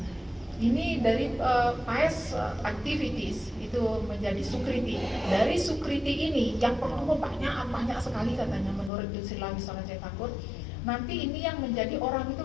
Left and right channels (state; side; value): drops out; right; at 8.9 s